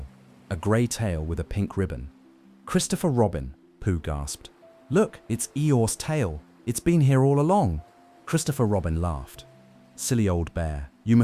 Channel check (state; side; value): identical; both; correlation 1.00